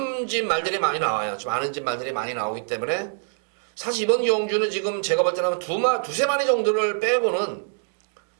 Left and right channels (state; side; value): silent; left; digital silence